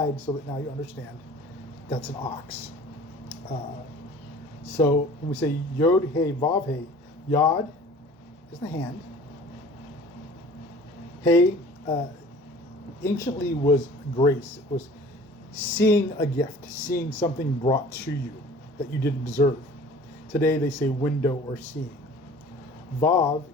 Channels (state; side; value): normal; both; correlation 0.46